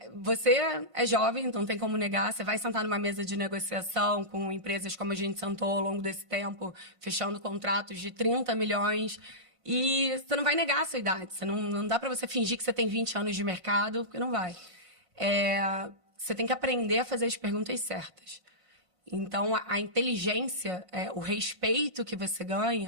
você é jovem, então não tem como negar, você vai sentar numa mesa de negociação com empresas como a gente sentou ao longo desse tempo, fechando contratos de 30 milhões, e você não vai negar a sua idade, não dá para você fingir que você tem 20 anos de mercado, porque não vai. Você tem que aprender a fazer as perguntas certas. Então, a inteligência, o respeito que você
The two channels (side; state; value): left; late; 5.5 ms